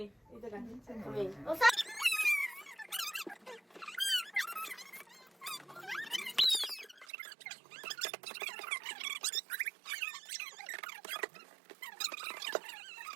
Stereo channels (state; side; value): drops out; left; at 7.1 s